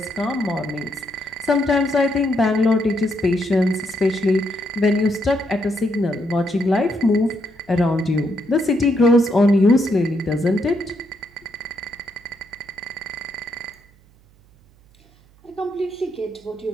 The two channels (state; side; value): noise; right; hum, 29 dB below the sound